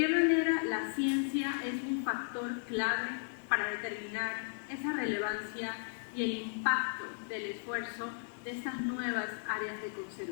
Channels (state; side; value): silent; right; digital silence